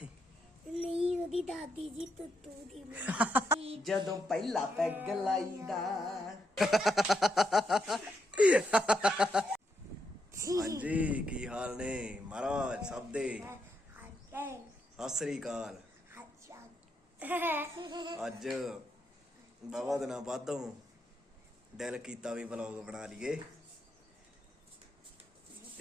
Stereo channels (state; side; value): normal; both; correlation 0.80